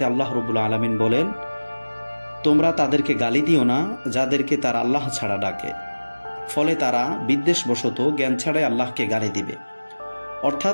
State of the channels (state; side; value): inverted; both; correlation -1.00